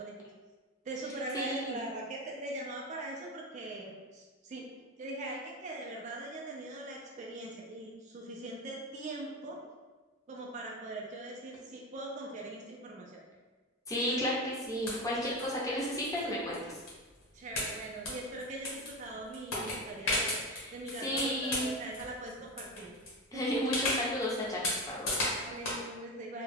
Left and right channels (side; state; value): both; normal; correlation 0.19